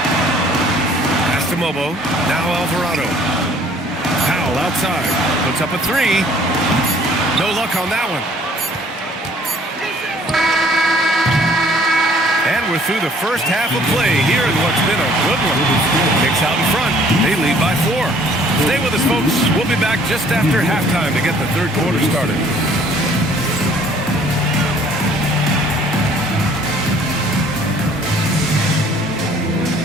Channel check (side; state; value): both; normal; correlation 0.57